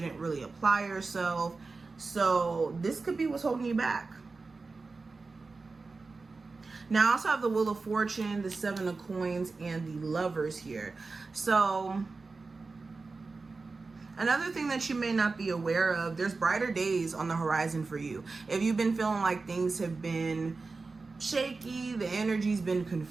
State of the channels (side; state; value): left; quieter; 4.0 dB